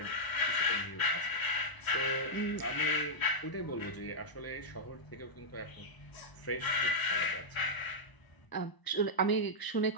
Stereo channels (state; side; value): late; right; 1.0 ms